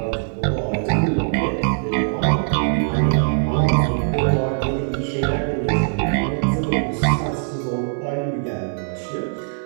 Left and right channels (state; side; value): silent; left; 59 dB below the other